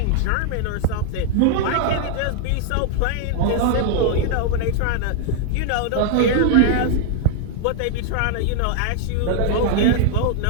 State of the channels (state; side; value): different; both; correlation 0.00